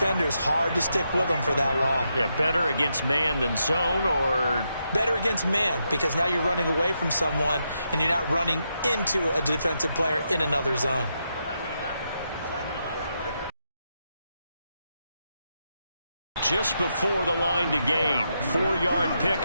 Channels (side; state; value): both; inverted; correlation -0.83